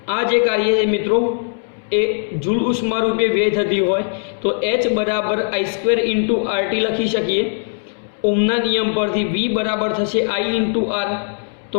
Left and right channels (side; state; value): right; silent; 66 dB below the other